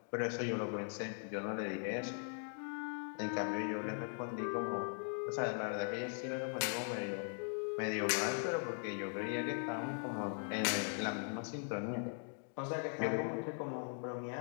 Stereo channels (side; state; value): right; silent; 51 dB below the other